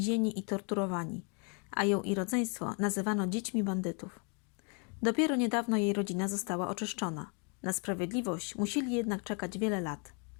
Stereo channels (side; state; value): right; quieter; 36.8 dB